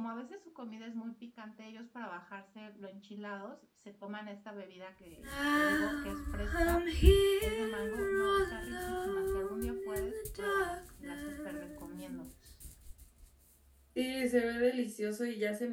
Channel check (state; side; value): identical; both; correlation 1.00